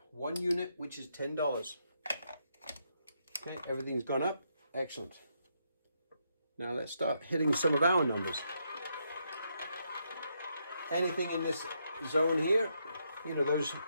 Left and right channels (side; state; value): both; inverted; correlation -0.78